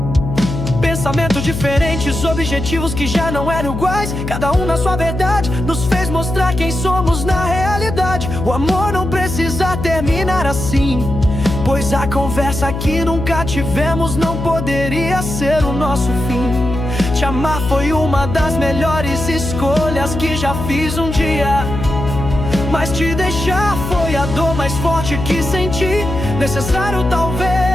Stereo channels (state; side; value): noise; left; hum, 5 dB below the sound